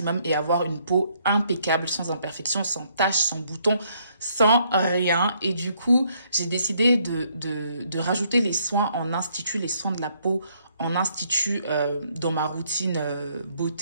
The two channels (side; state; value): both; inverted; correlation -0.70